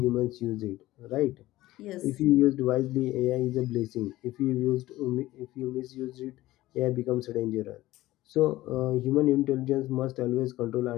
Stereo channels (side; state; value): right; quieter; 16.8 dB